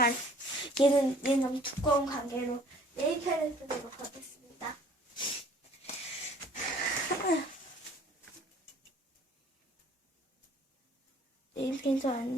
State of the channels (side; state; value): both; normal; correlation 0.54